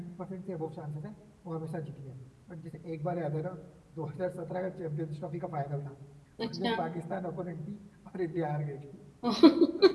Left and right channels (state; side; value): identical; both; correlation 1.00